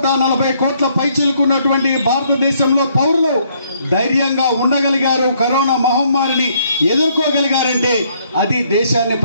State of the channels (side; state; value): both; inverted; correlation -0.68